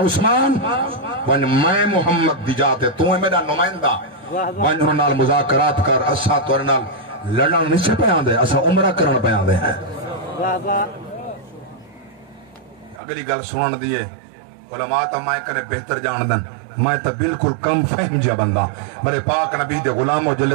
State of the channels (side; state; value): left; drops out; at 13.0 s